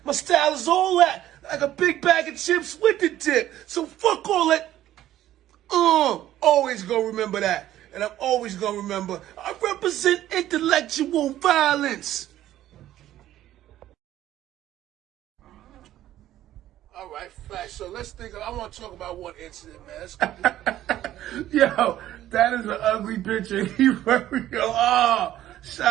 My style is all that, like a big bag of chips with the dip. So fuck all that. Always gonna remember that. And I'm always gonna remember, I represent intellectual violence. All right, facts. So let's think. I want to talk about one incident, man. Let's go. Yo, that is an ugly picture.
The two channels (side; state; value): left; quieter; 13.2 dB